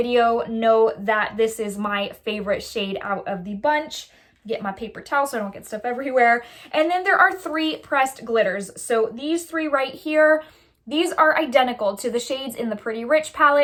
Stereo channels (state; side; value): identical; both; correlation 1.00